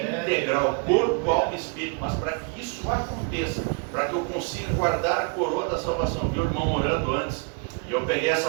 corpo, alma e espírito. Mas para que isso aconteça, para que eu consiga guardar a coroa da salvação, vi o irmão orando antes, e eu peguei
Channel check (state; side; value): quieter; left; 32.5 dB